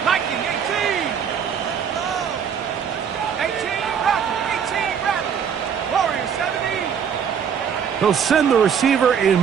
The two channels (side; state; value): left; quieter; 7.6 dB